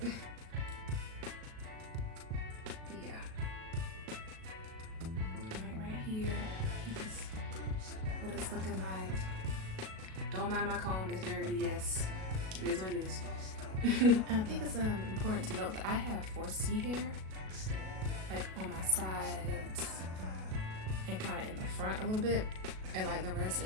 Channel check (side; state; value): left; late; 37 ms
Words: Yeah. Right here. This is what it's looking like. Don't mind my comb, it's dirty, yes. It is what it is. I think it's important to note that I have 4C hair, like on my sides and kind of in the front a little bit, and like the rest